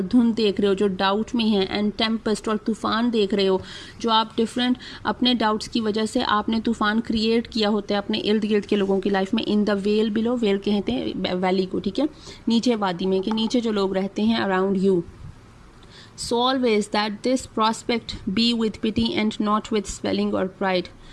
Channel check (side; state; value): both; identical; correlation 1.00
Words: धुंध देख रहे हो जो डाउट में है, एंड टेम्पेस्ट, और तूफ़ान देख रहे हो जो आप डिफरेंट अपने डाउट्स की वजह से आपने तूफ़ान क्रिएट किया होता है अपने इर्द गिर्द के लोगों की लाइफ में. इन द वेल बिलो, वेल कहते हैं वैली को, ठीक है, नीचे वादी में, कि नीचे जो लोग रहते हैं around you. So always that this prospect be with pity and not with swelling or pride.